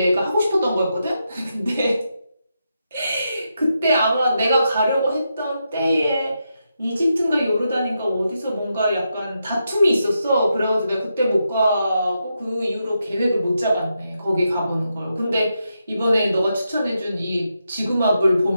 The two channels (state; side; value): inverted; both; correlation -0.84